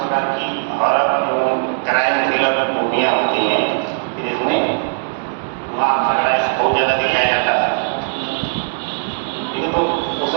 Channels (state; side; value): silent; left; 67 dB below the other